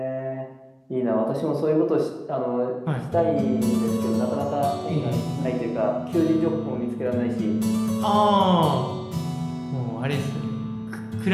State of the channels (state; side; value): identical; both; correlation 1.00